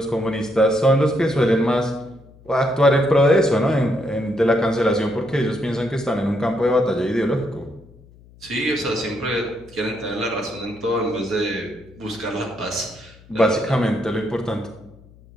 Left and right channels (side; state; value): left; noise; hum, 25 dB below the sound